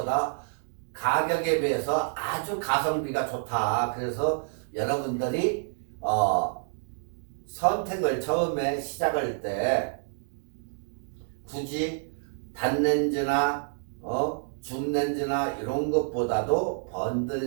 가격에 비해서 아주 가성비가 좋다. 그래서 여러분들이 선택을 처음에 시작할 때 굳이 단렌즈나 줌렌즈나 이런 것보다도 번들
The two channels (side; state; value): left; silent; digital silence